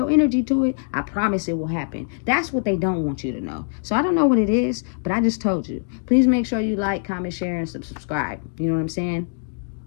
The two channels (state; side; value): silent; right; digital silence